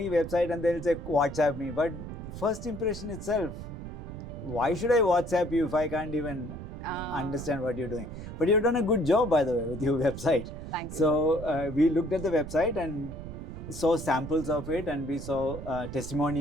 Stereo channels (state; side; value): noise; right; rumble, 10 dB below the sound